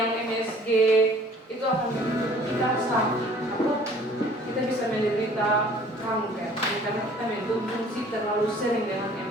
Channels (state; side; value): normal; both; correlation 0.53